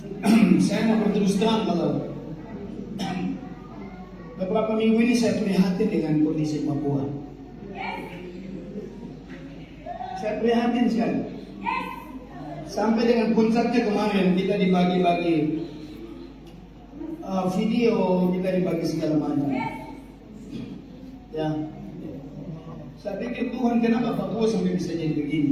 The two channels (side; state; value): both; identical; correlation 1.00